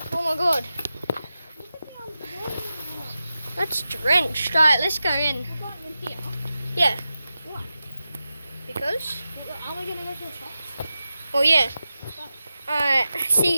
Oh my god. That's drenched. Alright, let's go in. Yeah. Why? Because? Are we going to go to the shops? Oh yeah. Alright,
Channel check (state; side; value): inverted; both; correlation -0.92